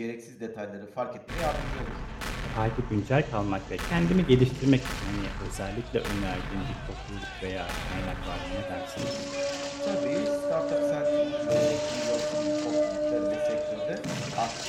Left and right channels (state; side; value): identical; both; correlation 1.00